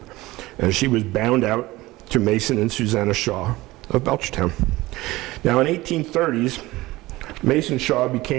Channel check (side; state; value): left; quieter; 19.2 dB